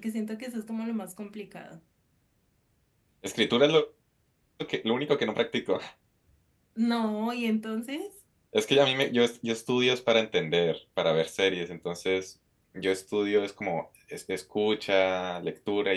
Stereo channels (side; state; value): both; identical; correlation 1.00